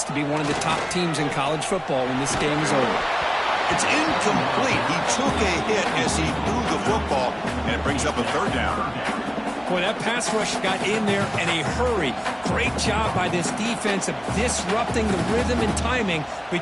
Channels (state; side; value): identical; both; correlation 1.00